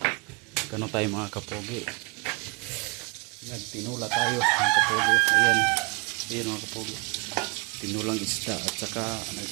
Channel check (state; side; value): quieter; left; 29.2 dB